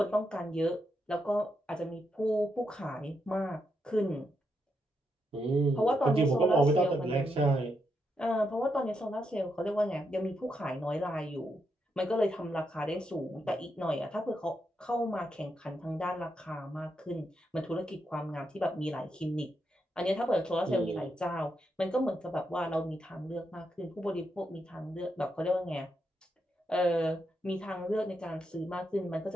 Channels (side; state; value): both; normal; correlation 0.82